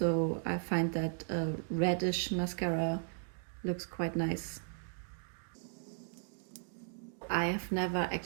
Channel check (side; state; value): left; silent; digital silence